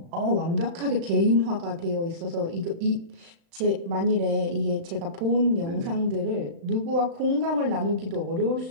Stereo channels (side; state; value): left; late; 35 ms